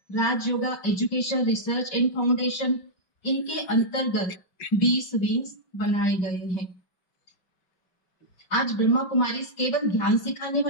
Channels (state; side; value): late; right; 5.6 ms